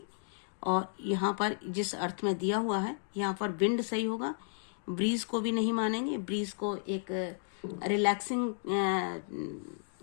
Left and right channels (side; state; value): right; silent; digital silence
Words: और यहाँ पर जिस अर्थ में दिया हुआ है यहाँ पर विंड सही होगा। ब्रीज को भी नहीं मानेंगे, ब्रीज को एक रिलैक्सिंग